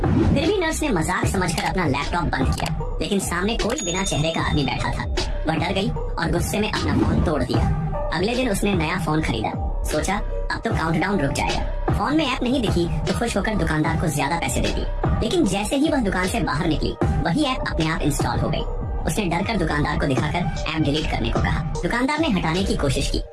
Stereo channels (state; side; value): identical; both; correlation 1.00